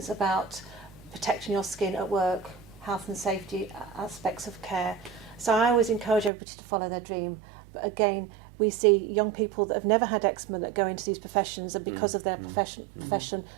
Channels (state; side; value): drops out; left; at 6.3 s